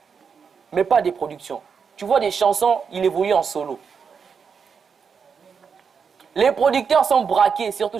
Mais pas des productions. Tu vois des chansons, il évolue en solo. Les producteurs sont braqués, surtout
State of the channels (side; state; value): left; quieter; 6.2 dB